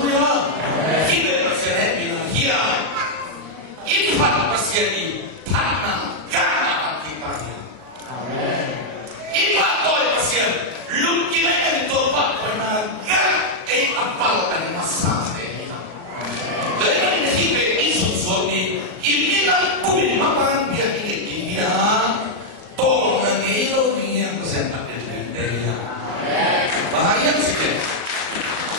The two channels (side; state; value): left; late; 37 ms